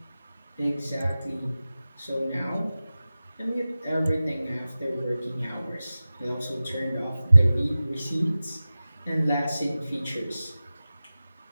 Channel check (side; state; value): both; inverted; correlation -0.96